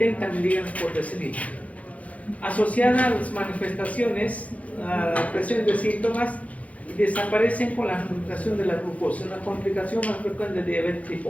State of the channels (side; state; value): right; late; 0.067 ms